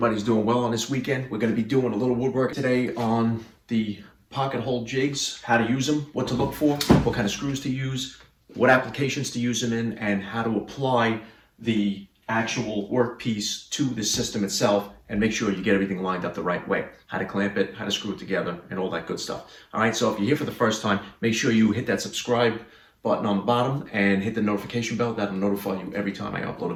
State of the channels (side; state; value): both; identical; correlation 1.00